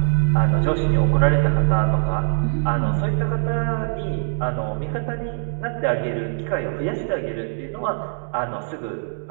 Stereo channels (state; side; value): silent; left; digital silence